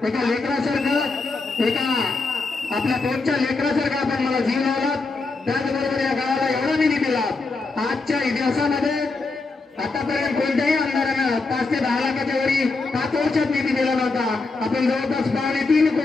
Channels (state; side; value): quieter; right; 3.8 dB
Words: एका लेकरासारखं, एका आपल्या पोटच्या लेकरासारखं आपण मला जीव लावला। त्याचबरोबर या गावाला एवढा निधी दिला। आजच्या इतिहासामध्ये आतापर्यंत कोणत्याही आमदारानं 5 ते 10 लाखाच्या वरी 5 वर्षात निधी दिला नव्हता। आपण जवळपास 3.5